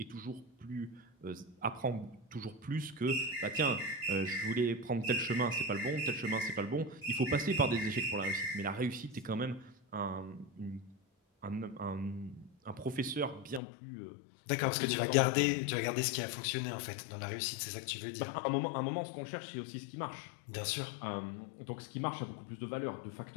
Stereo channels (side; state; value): right; drops out; at 13.6 s